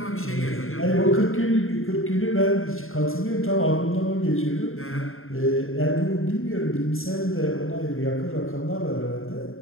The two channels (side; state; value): right; late; 0.61 ms